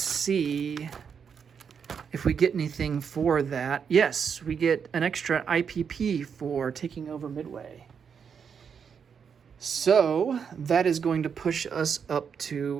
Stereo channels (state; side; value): quieter; left; 6.8 dB